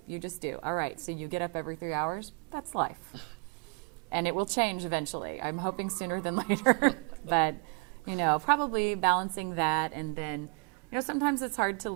You just do. All right, so you get up every 3 hours. That's life. And it will change eventually. I'm hoping sooner than later. But, you know, probably balancing that. And then, you know, sometimes it's hard to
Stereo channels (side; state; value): left; quieter; 31.8 dB